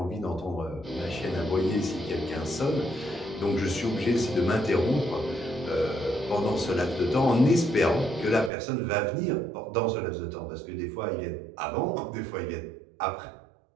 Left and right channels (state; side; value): drops out; left; at 8.5 s